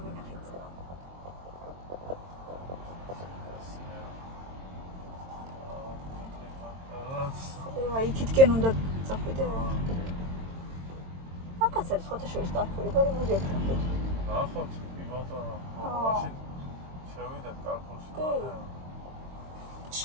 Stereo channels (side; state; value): left; late; 22 ms